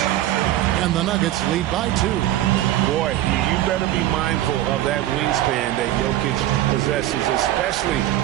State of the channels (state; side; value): quieter; left; 14.0 dB